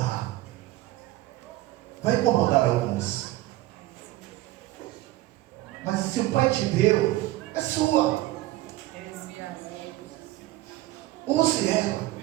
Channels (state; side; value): quieter; left; 17.1 dB